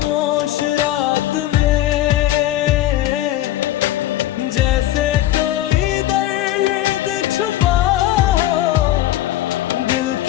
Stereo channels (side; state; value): right; quieter; 14.1 dB